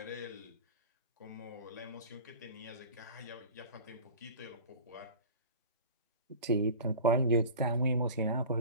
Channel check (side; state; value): both; inverted; correlation -0.37